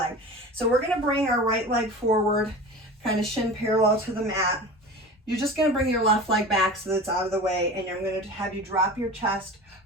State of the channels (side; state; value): both; normal; correlation 0.34